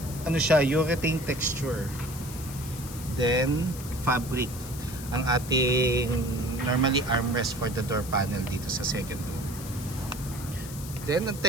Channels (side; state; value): left; noise; hiss, 13 dB below the sound